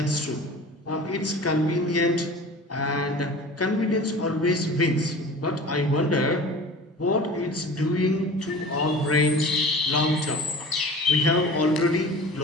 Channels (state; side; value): normal; both; correlation 0.39